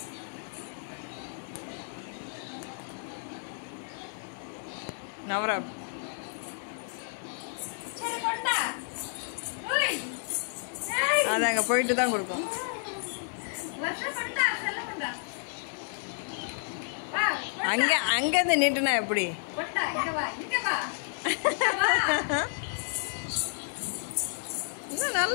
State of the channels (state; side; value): silent; right; digital silence